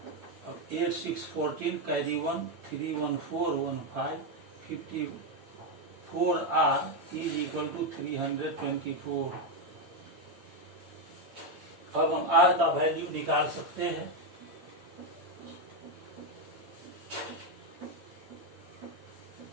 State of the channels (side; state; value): left; late; 8.8 ms